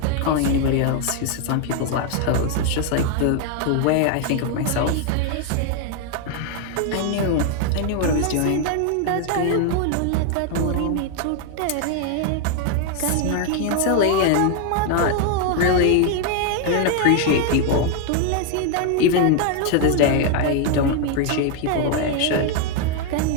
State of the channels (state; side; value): different; both; correlation 0.01